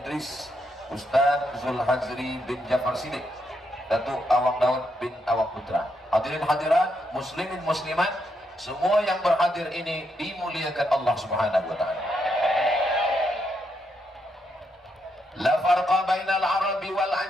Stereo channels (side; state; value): both; normal; correlation 0.79